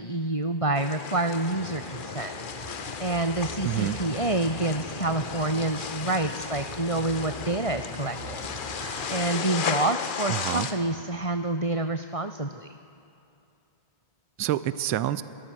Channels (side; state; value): right; late; 2.4 ms